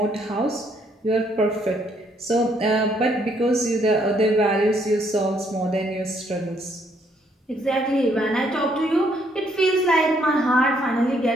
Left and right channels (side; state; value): both; normal; correlation 0.69